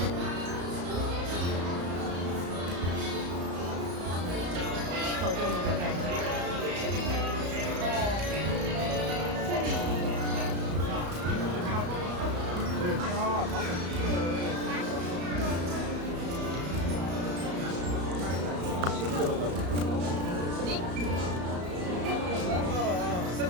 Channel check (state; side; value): late; left; 34 ms